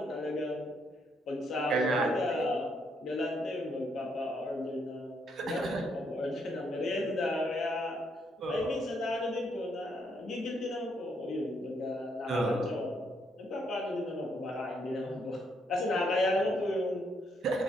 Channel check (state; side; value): normal; both; correlation 0.74